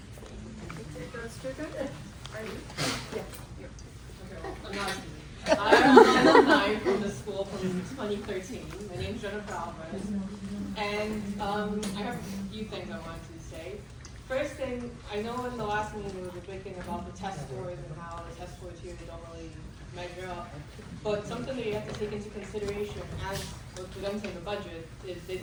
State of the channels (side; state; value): both; identical; correlation 1.00